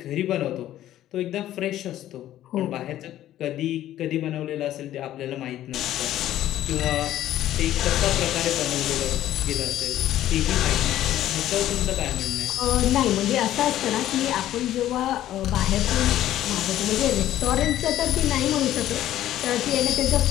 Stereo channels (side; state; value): right; quieter; 13.0 dB